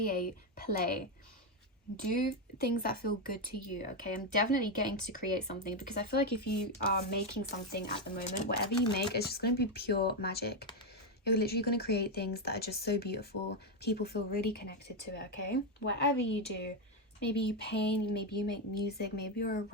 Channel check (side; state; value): both; normal; correlation 0.06